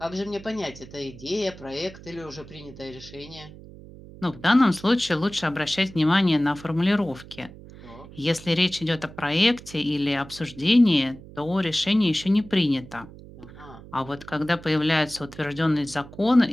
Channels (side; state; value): right; noise; hum, 18 dB below the sound